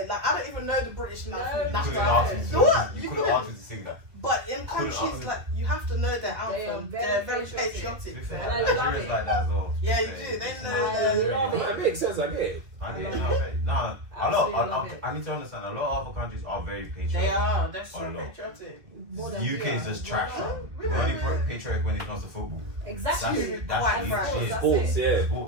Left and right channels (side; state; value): left; late; 2.4 ms